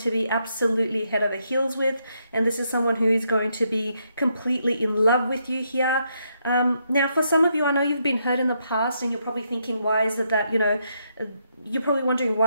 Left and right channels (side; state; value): both; inverted; correlation -0.78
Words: be absolutely head over heels with, and this is someone who is going to be completely in love with you here. Now, for some of you, I know you've been hurt in the past, and you're probably thinking, why is it that, you know, you're probably wondering,